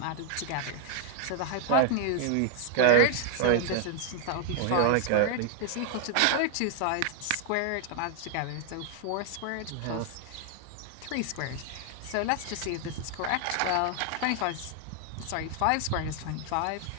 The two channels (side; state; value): both; different; correlation 0.00